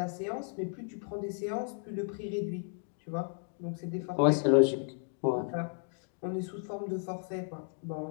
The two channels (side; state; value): right; silent; 55 dB below the other